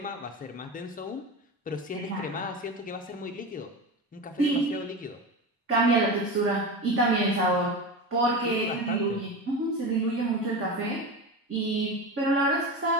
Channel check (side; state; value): both; normal; correlation 0.25